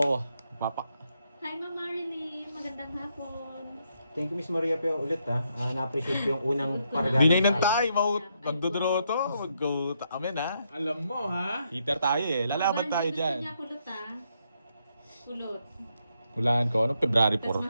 Papa. Hi, Ma'am Marilyn. Magandang hapon. Thank you, Miss Maria Pio, ulit ha. Na-appreciate ko yung unang paragana. Dinay ng tayo, magdodro to. Mag-go amen ha. Alam mo, ha? Heater tayo eh. Lalaban tayo Gusto dyan. niya kulot kulot. Hulaan ko. Anong February Tapos 4?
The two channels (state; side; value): inverted; both; correlation -0.78